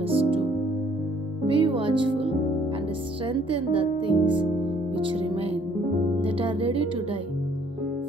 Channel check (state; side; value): normal; both; correlation 0.61